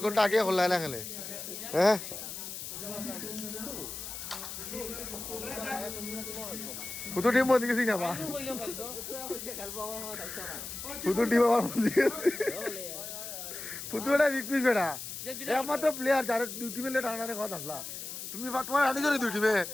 ঘন্টা আগে খেলা না খেলে হ্যাঁ কত টিম বন্ধ গেছি না বা কত টিম আমার বন্ধ গেছে ফুটবলটা বিকপিস বেটা একমাত্র প্লেয়ার যারা 2 টিমে লেট আনারে কথা আসলা তুমি তোমার আনি জনি 2 টিমে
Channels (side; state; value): left; noise; hiss, 8 dB below the sound